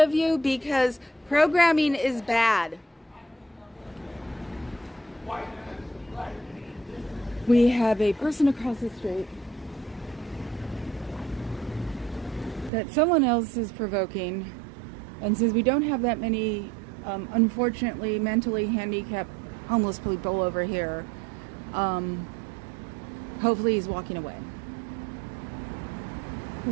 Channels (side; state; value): left; drops out; at 12.7 s